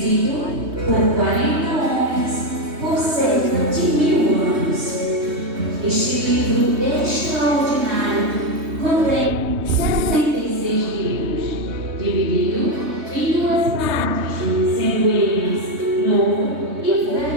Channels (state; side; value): late; left; 3.2 ms